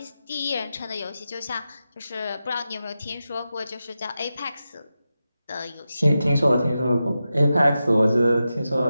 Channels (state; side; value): inverted; both; correlation -0.91